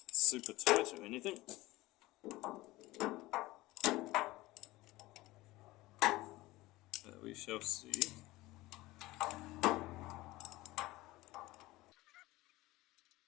super tight or anything. But we shall see.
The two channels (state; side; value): quieter; right; 19.2 dB